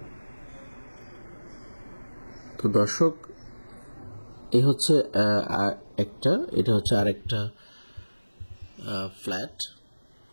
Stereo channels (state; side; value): inverted; both; correlation -1.00